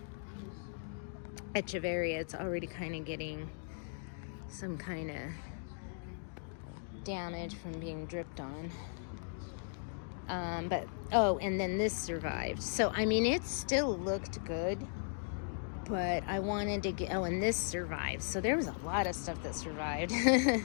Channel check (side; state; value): right; silent; digital silence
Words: Echeveria. It's already kind of getting some kind of damage from being dripped on. And then this survived. So, I mean, it still looked good, but I wanted to get, and this survived. So there was a lot of stuff that survived.